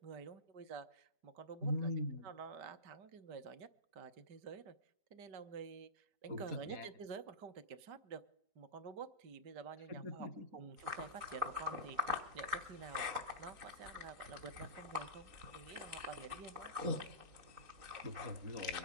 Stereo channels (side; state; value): left; late; 4.0 ms